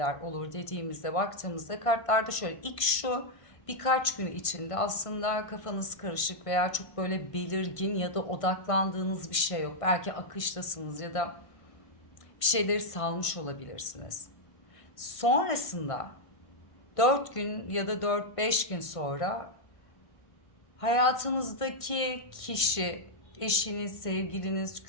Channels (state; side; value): late; right; 1.5 ms